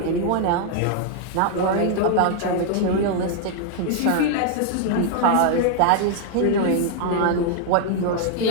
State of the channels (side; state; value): both; different; correlation 0.00